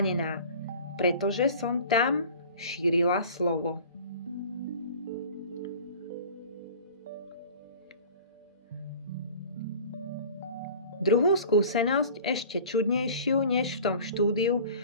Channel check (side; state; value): both; inverted; correlation -0.43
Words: pretože som tam šírila slovo. Druhú skúsenosť, ešte čudnejšiu než v tom štúdiu,